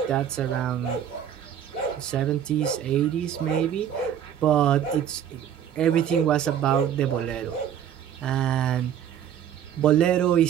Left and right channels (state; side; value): quieter; left; 9.4 dB